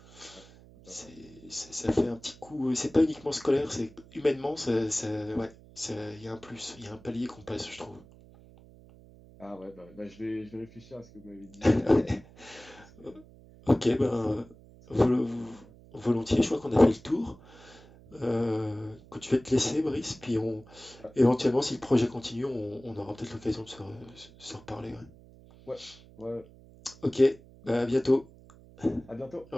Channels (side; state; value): right; noise; hum, 22 dB below the sound